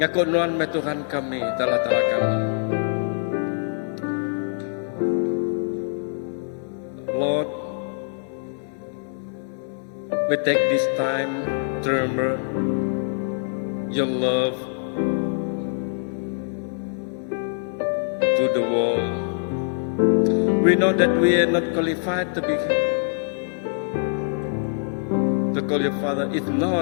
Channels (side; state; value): right; silent; 59 dB below the other